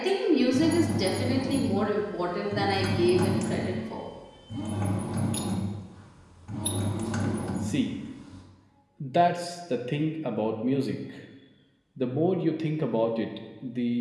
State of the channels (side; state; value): both; identical; correlation 1.00